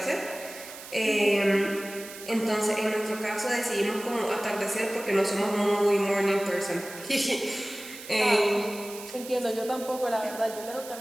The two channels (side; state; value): right; noise; hiss, 14 dB below the sound